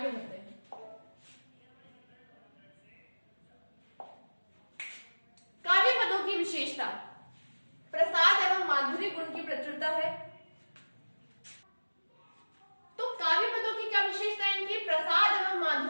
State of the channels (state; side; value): inverted; both; correlation -1.00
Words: बढ़ते हैं। काव्य पदों की विशेषता, प्रसाद एवं माधुर्य गुण की प्रचुरता है। तो काव्य पदों की क्या विशेषता है, इनकी प्रसाद एवं